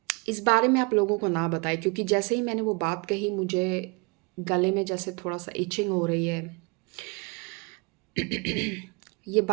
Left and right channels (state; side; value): quieter; left; 30.0 dB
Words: इस बारे में आप लोगों को ना बताएं, क्योंकि जैसे ही मैंने वो बात कही, मुझे गले में जैसे थोड़ा सा इचिंग हो रही है। ये